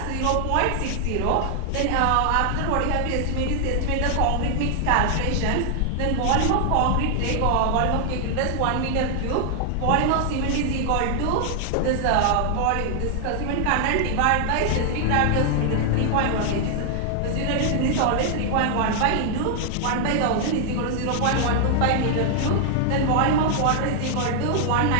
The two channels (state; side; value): different; both; correlation 0.00